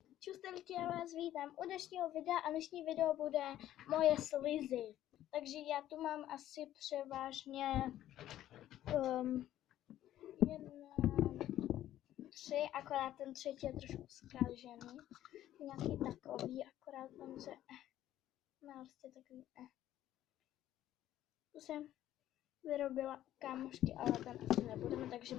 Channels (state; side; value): quieter; right; 12.8 dB